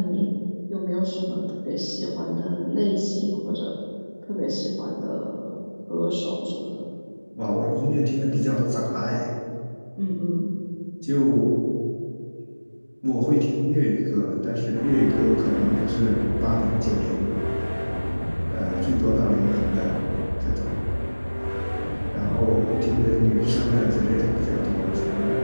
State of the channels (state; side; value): inverted; both; correlation -1.00